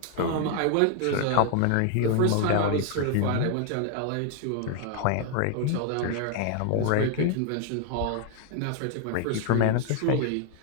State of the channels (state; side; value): different; both; correlation 0.00